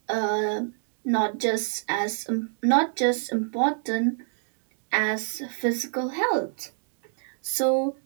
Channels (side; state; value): left; silent; 60 dB below the other